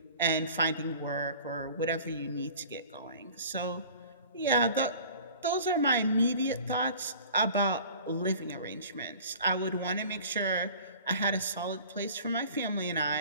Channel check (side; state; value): both; inverted; correlation -0.45